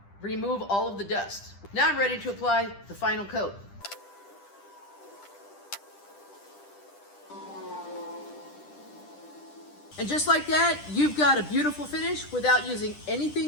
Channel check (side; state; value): right; late; 10 ms